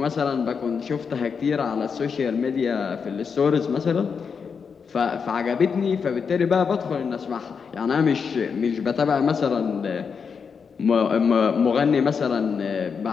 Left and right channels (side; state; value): right; quieter; 6.0 dB